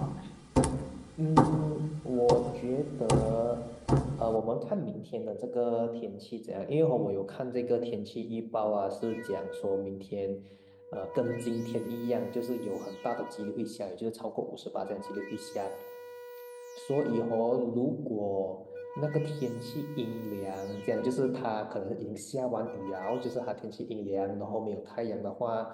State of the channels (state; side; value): identical; both; correlation 1.00